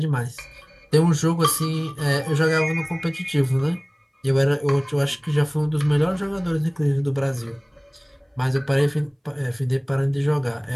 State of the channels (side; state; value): both; identical; correlation 1.00